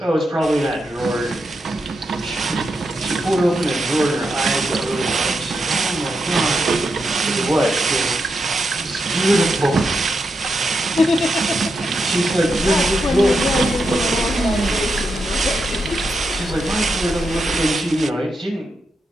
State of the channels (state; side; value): normal; both; correlation 0.85